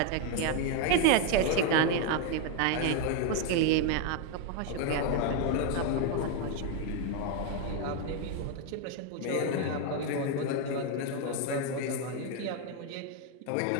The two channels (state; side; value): different; both; correlation 0.01